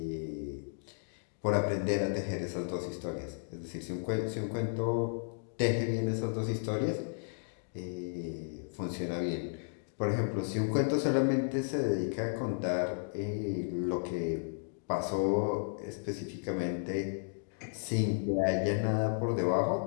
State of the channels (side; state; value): right; silent; digital silence